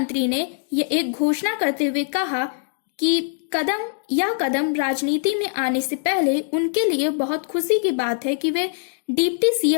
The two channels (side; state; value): right; silent; digital silence